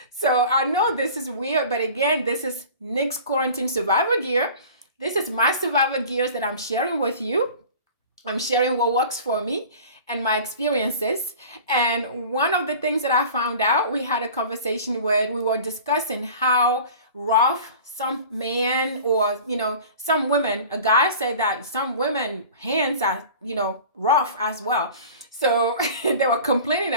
So I know this is weird, but again, this is Nick's Quarantine Survivor Gear. This is my survivor gears that I'm sharing with you. I'm sharing what works for me and my experiences. And one of the things that I found out, we had a conversation where we were discussing how rough some men or, some women, a guy said that some women hands are, rough as well. So they were complaining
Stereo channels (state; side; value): inverted; both; correlation -0.41